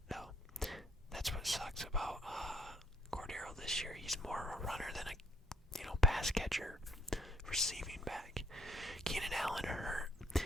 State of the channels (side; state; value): both; normal; correlation 0.69